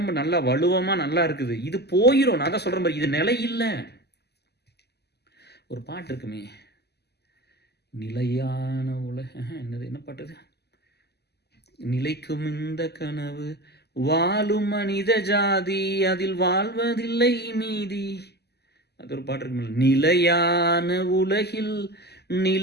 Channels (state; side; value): late; right; 0.48 ms